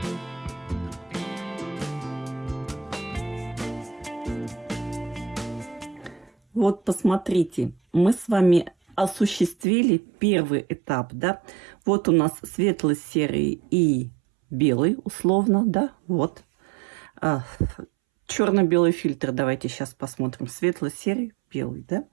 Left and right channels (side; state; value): left; drops out; at 9.7 s